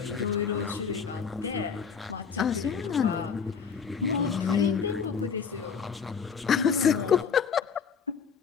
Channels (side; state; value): right; quieter; 6.4 dB